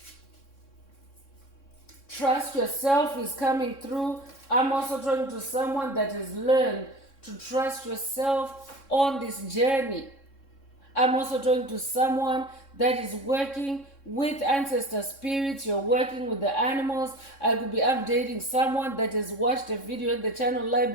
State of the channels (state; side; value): late; right; 3.6 ms